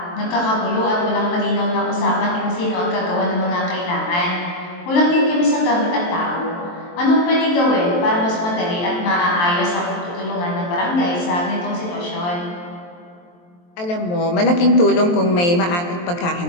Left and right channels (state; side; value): late; right; 23 ms